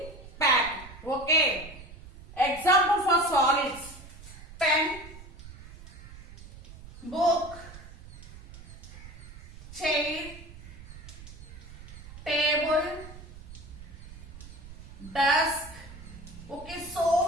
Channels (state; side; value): noise; right; rumble, 16 dB below the sound